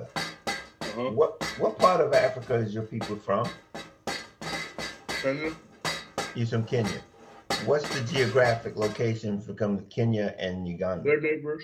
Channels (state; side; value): identical; both; correlation 1.00